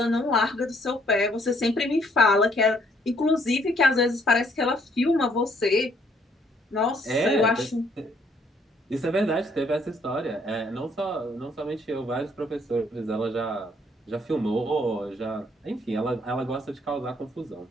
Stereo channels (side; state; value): both; normal; correlation 0.66